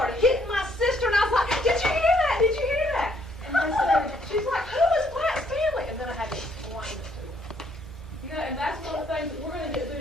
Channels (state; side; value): normal; both; correlation 0.68